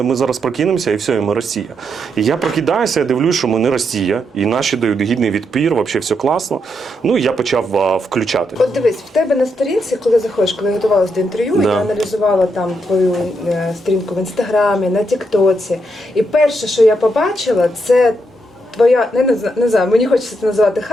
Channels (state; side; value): normal; both; correlation 0.80